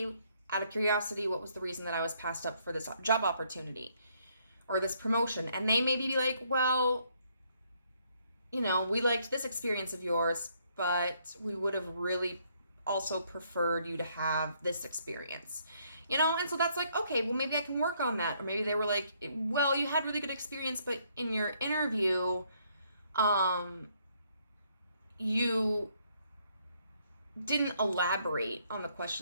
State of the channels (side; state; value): both; inverted; correlation -0.70